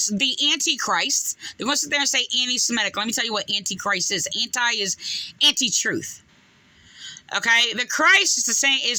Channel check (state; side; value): identical; both; correlation 1.00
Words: the Antichrist. They're going to sit there and say anti-Semitic. Let me tell you what Antichrist is. Anti is anti-truth. Okay? The Christ